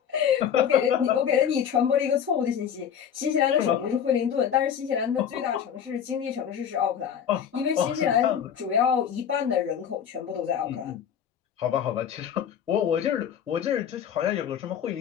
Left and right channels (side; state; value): right; quieter; 8.5 dB